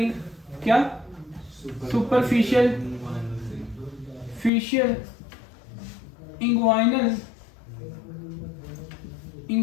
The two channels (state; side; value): drops out; right; at 4.5 s